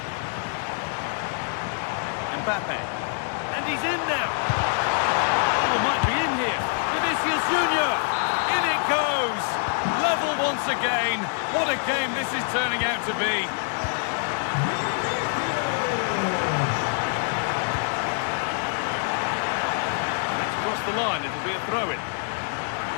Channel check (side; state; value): right; silent; 56 dB below the other